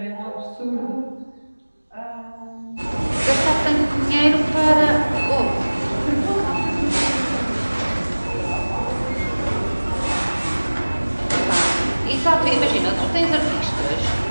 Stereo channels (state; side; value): inverted; both; correlation -1.00